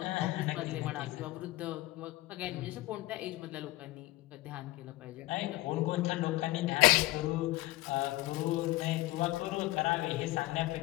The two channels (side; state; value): right; quieter; 18.6 dB